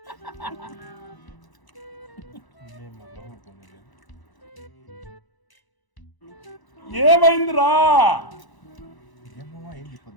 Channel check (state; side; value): late; right; 1.0 ms